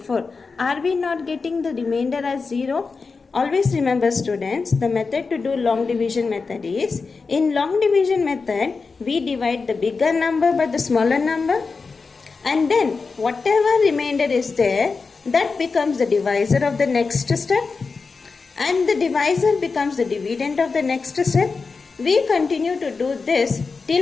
Are we not getting the remainder as 0? Always remember students, the method to do long division method is, in long division method we divide the bigger number by the smaller number, and then whatever remainder is there, that becomes the divisor of the next step, and the divisor becomes the dividend of the next step. We continue to do this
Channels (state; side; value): quieter; right; 4.6 dB